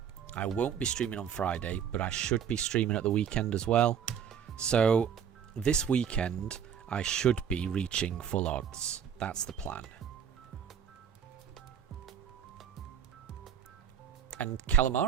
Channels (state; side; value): quieter; left; 8.3 dB